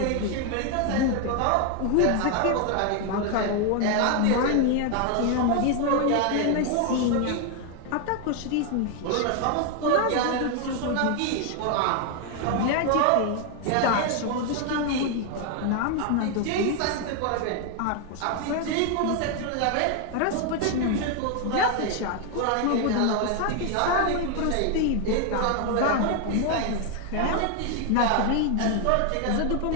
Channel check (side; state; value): both; different; correlation 0.01